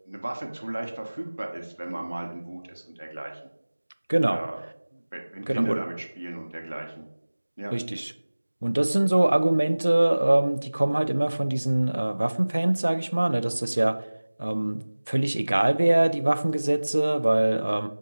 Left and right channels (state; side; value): inverted; both; correlation -1.00